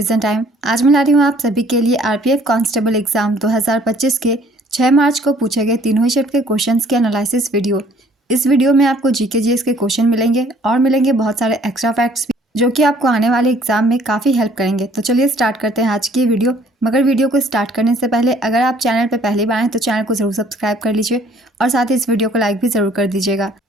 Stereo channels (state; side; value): normal; both; correlation 0.58